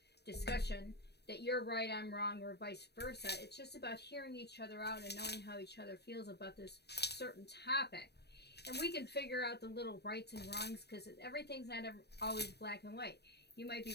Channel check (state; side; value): late; right; 0.48 ms